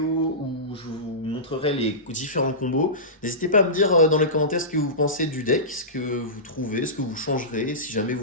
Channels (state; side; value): normal; both; correlation -0.18